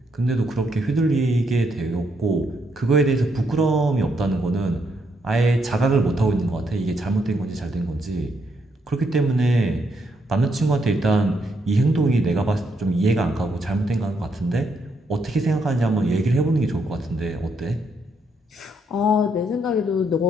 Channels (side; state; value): both; normal; correlation 0.76